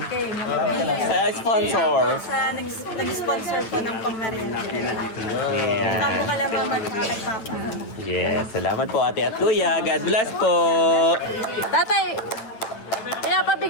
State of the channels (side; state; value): right; late; 9.0 ms